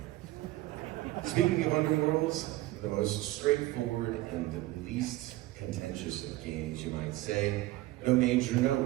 Speaking of Underworlds, the most straightforward and least contentious of games, you might say. No major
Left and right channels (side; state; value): left; quieter; 17.5 dB